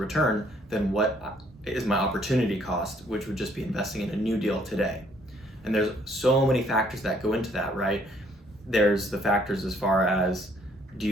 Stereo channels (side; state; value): both; normal; correlation 0.64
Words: than what is my opportunity cost, which would just be investing in a new deal today? And there's so many factors that go into that, right? There's the factors as far as, do